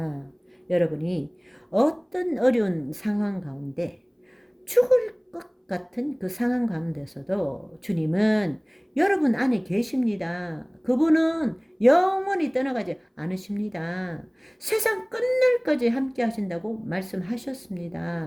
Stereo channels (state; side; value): identical; both; correlation 1.00